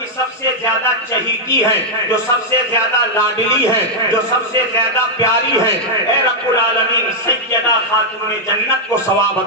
سب سے زیادہ چہیتی ہے، جو سب سے زیادہ لاڈلی ہے، جو سب سے زیادہ پیاری ہے، اے رب العالمین سیدہ خاتون جنت کو ثواب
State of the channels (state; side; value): normal; both; correlation -0.03